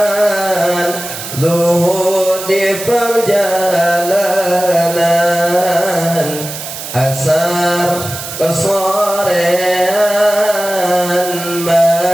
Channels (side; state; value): right; noise; hiss, 9 dB below the sound